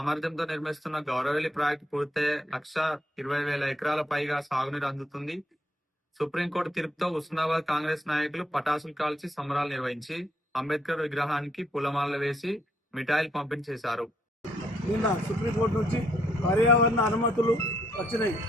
నిర్మిస్తున్న గౌరవల్లి ప్రాజెక్టు పూర్తయ్యే 1,20,000 ఎకరాల పైగా సాగునీరు అందుతుంది. సుప్రీంకోర్టు తీర్పుతో హుస్నాబాద్ కాంగ్రెస్ నాయకులు పటాసులు కాల్చి సంబరాలు నిర్వహించి అంబేద్కర్ విగ్రహానికి పూలమాలలు వేసి మిఠాయిలు పంపిణీ చేశారు. నిన్న సుప్రీంకోర్టు నుంచి పర్యావరణ అనుమతులు వచ్చినాయి.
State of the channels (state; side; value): normal; both; correlation 0.72